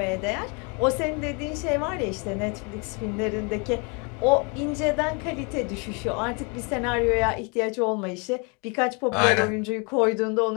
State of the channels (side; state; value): right; quieter; 33.2 dB